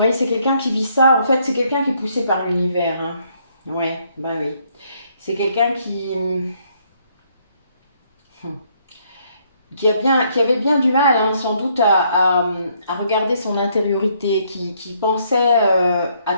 c'est quelqu'un qui vit ça. En fait, c'est quelqu'un qui est poussé par l'univers. Hein. Ouais, bah oui. C'est quelqu'un qui avait bien du mal, hein, sans doute, à regarder son intériorité, qui pensait à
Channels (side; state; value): both; inverted; correlation -0.69